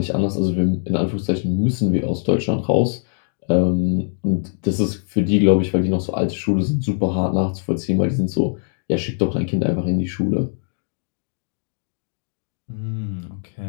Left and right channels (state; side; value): silent; right; digital silence